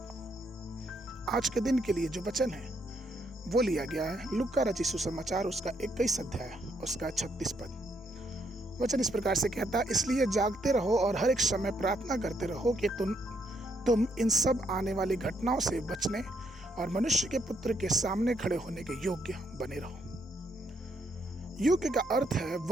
आज के दिन के लिए जो वचन है वो लिया गया है लूका रचित सुसमाचार उसका 21 अध्याय उसका 36 पद। वचन इस प्रकार से कहता है, इसलिए जागते रहो और हर एक समय प्रार्थना करते रहो कि तुम इन सब आने वाली घटनाओं से बचने और मनुष्य के पुत्र के सामने खड़े होने के योग्य बने रहो। योग्य का अर्थ है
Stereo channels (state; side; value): normal; both; correlation 0.74